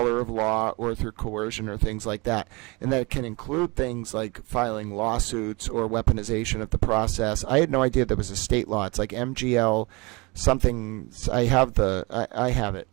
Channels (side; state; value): left; quieter; 26.5 dB